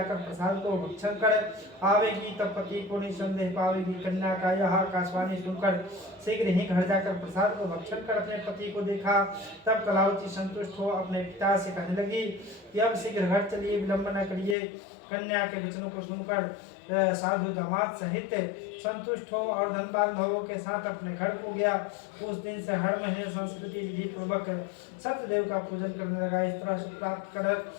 प्रसाद को भक्षण कर आवेगी तब पति को निसंदेह पावेगी। कन्या का यह आकाशवाणी सुनकर शीघ्र ही घर जाकर प्रसाद को भक्षण कर अपने पति को देखा। तब कलावती संतुष्ट हो अपने पिता से कहने लगी कि अब शीघ्र घर चलिए, विलंब न करिए। कन्या के वचनों को सुनकर साधु दामाद सहित संतुष्ट हो और धन बांधवों के साथ अपने घर को गया। उस दिन से हर महीने संस्कृति विधि पूर्वक सत्यदेव का पूजन करने लगा। इस तरह से प्राप्त कर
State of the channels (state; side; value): drops out; right; at 14.6 s